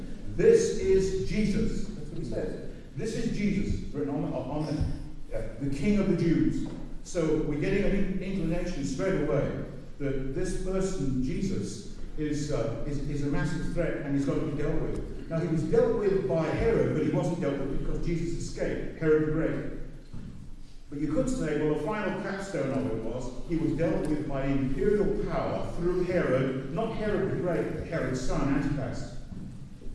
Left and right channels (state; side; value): identical; both; correlation 1.00